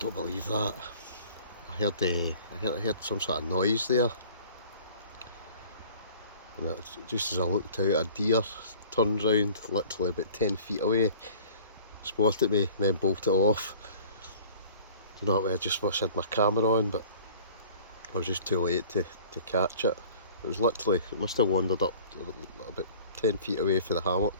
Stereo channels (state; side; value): inverted; both; correlation -0.49